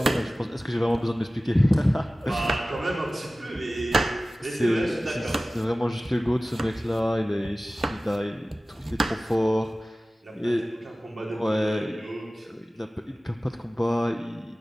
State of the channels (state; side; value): normal; both; correlation 0.97